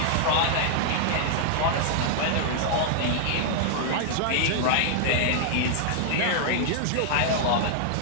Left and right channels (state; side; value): different; both; correlation -0.01